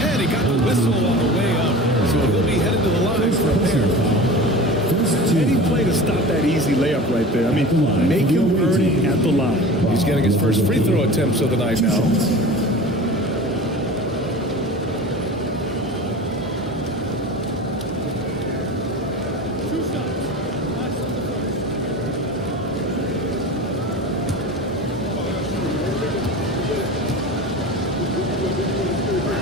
And he got the whistle on the way up. So he'll be headed to the line for a pair. Any play to stop that easy layup right there. I mean, make him earn it at the line. He's getting his first free throw attempts of the night now.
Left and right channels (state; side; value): normal; both; correlation 0.35